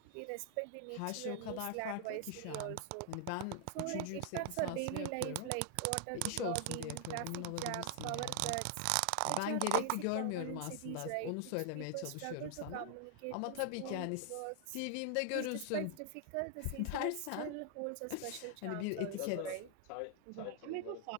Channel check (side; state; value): both; different; correlation 0.00